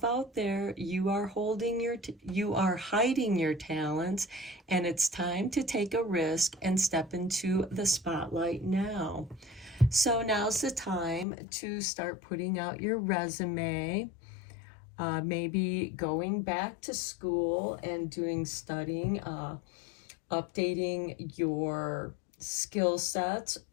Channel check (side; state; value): right; drops out; at 11.2 s